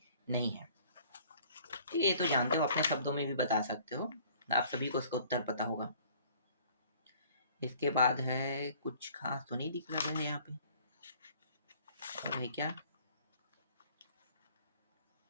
नहीं है, ठीक है। ये तो जानते हो, अपने शब्दों में भी बता सकते हो, आप सभी को इसका उत्तर पता होगा। इसके बाद है, कुछ खास तो नहीं दिख रहा है यहाँ पे, और है क्या,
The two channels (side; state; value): both; inverted; correlation -0.54